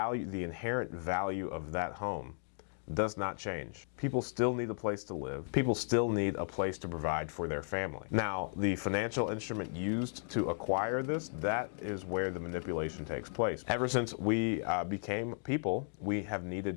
the inherent value of that home does not change. People still need a place to live. People still need a place to provide for their family. Now, the financial instrument used to acquire this, that is where the manipulation takes place. Ever since we became people, we have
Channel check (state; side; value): silent; right; digital silence